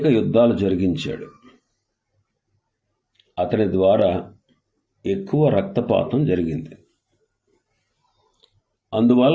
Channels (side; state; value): both; identical; correlation 1.00